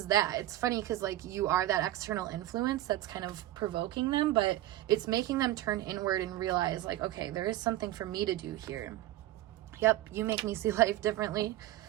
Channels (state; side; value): quieter; left; 15.0 dB